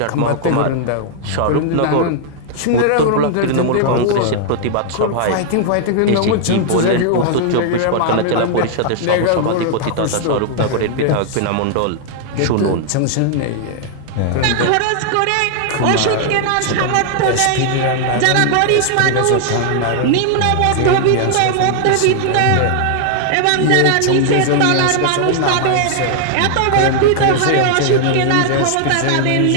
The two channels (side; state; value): both; different; correlation 0.00